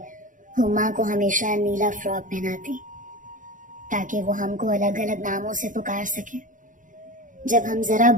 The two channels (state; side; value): late; left; 0.38 ms